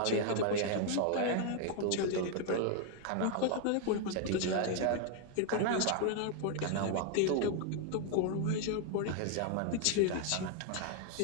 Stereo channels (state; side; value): different; both; correlation 0.00